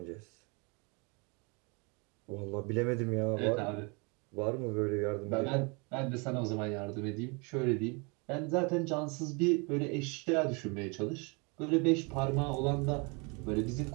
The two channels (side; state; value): left; quieter; 31.0 dB